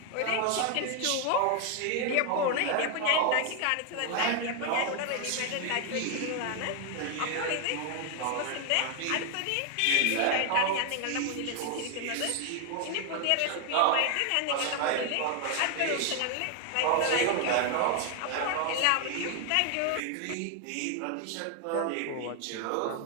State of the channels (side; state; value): both; different; correlation 0.01